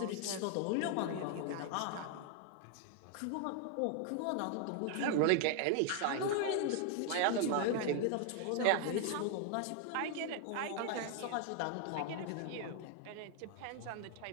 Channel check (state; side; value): different; both; correlation 0.00